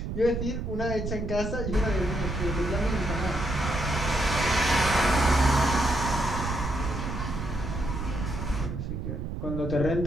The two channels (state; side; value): noise; right; rumble, 4 dB below the sound